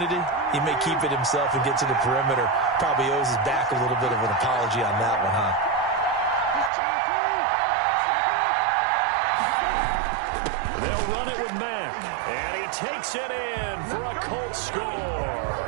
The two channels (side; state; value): left; drops out; at 6.7 s